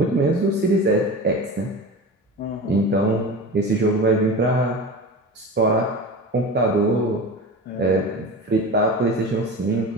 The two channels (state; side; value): normal; both; correlation 0.31